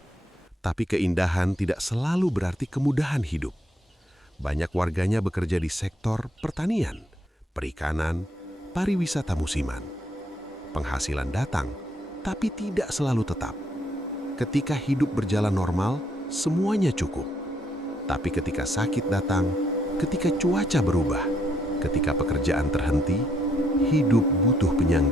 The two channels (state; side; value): normal; both; correlation 0.73